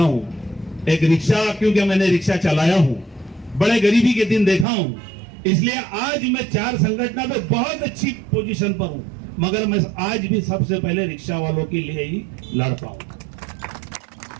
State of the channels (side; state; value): left; drops out; at 4.7 s